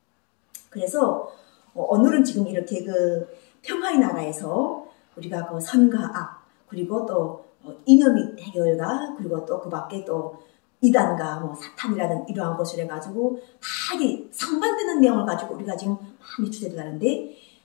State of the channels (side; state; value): right; quieter; 33.6 dB